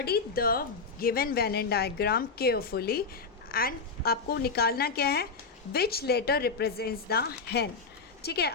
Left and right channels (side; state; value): right; quieter; 4.6 dB